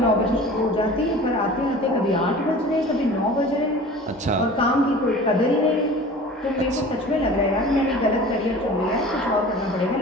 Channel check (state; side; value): normal; both; correlation 0.41